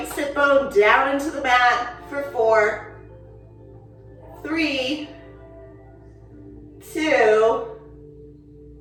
sit bone down into the mat for 4, 3, 2,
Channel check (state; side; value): identical; both; correlation 1.00